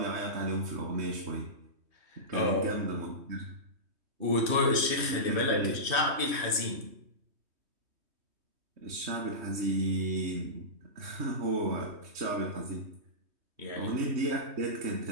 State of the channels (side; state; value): left; late; 3.2 ms